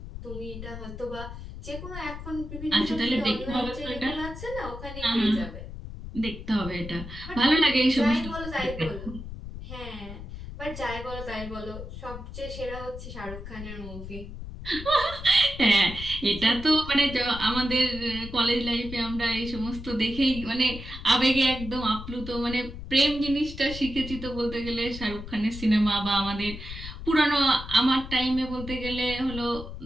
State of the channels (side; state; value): left; noise; rumble, 10 dB below the sound